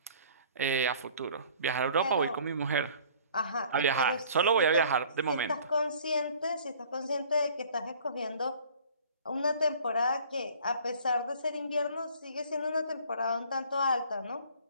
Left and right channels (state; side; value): inverted; both; correlation -0.51